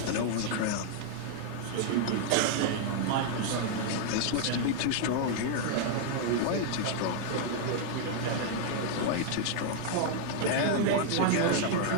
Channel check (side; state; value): both; different; correlation 0.00